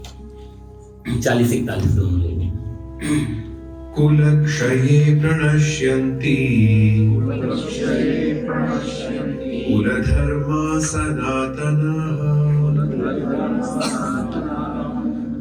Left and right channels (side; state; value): both; identical; correlation 1.00